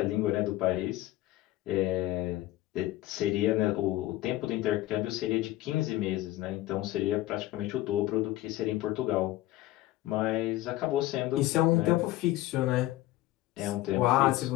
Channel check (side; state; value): right; quieter; 16.2 dB